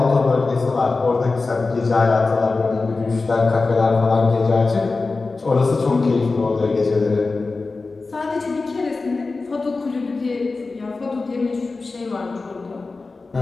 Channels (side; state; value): right; quieter; 3.8 dB